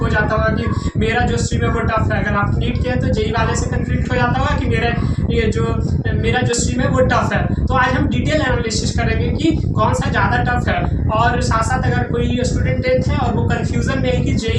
जाता होगा कि मेरा जो स्ट्रीम है वो टफ है। अगर आप नीट के हैं तो जेई वाले से कन्फ्लिक्ट हो जाता होगा कि मेरा जो स्ट्रीम है वो टफ है। तो आज हम डिटेल एनालिसिस करेंगे कि कौन सा ज़्यादा टफ है, और साथ साथ अगर कोई स्टूडेंट है और वो कन्फ्यूजन में है कि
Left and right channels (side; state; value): both; identical; correlation 1.00